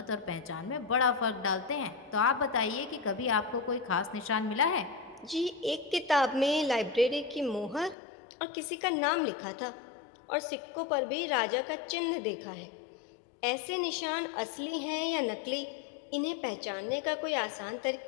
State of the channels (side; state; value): right; drops out; at 8.0 s